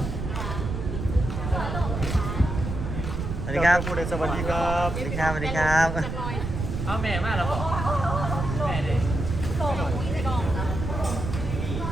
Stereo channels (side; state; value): right; noise; rumble, 4 dB below the sound